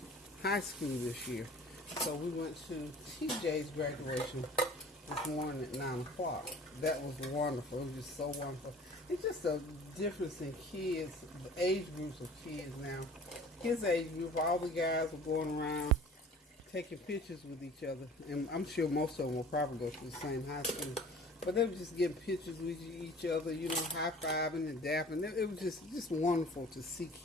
high school this year. So we went to TJ's graduation this morning at 9 o'clock. That was wonderful. It was just so wonderful. It's just a difference in kids, the age groups of kids now. His age group, all the guys were going around taking pictures with each other. And I'm sure most of them will probably go to the same high school. But they were just getting pictures with each other, you know, high-fiving and dapping. It was just wonderful to see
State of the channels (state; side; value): normal; both; correlation 0.46